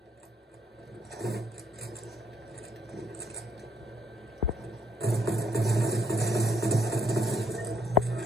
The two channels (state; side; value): normal; both; correlation 0.70